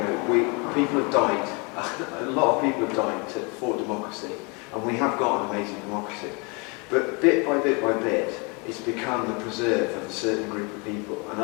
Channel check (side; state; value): right; quieter; 30.8 dB